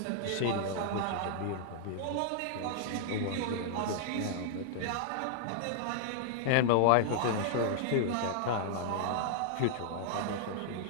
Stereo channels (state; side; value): different; both; correlation -0.01